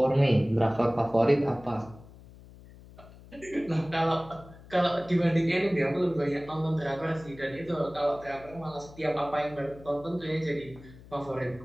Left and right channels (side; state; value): left; noise; hum, 20 dB below the sound